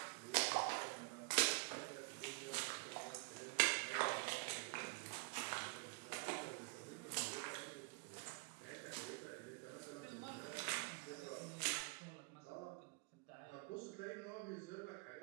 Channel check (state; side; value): quieter; left; 29.7 dB